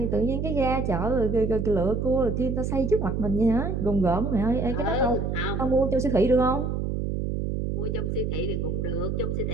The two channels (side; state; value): right; noise; hum, 1 dB below the sound